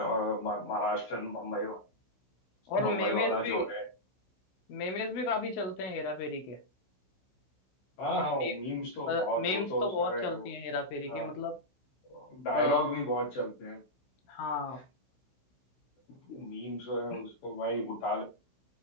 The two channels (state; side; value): late; right; 16 ms